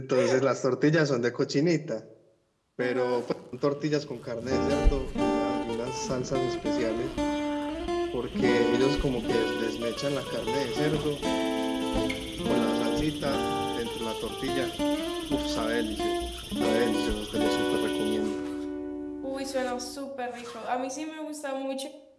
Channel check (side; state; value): both; identical; correlation 1.00